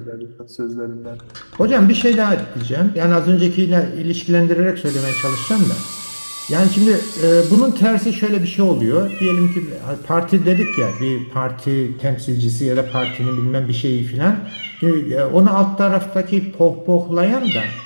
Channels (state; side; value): inverted; both; correlation -1.00